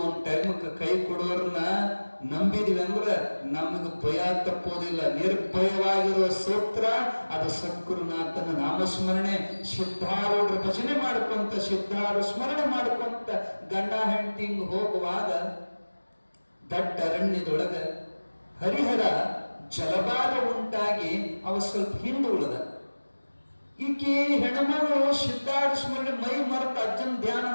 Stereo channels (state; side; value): inverted; both; correlation -1.00